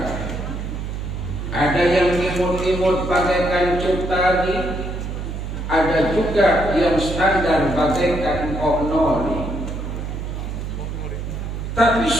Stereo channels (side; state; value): right; noise; hum, 5 dB below the sound